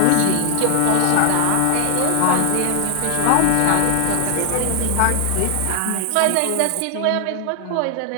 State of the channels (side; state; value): both; different; correlation 0.00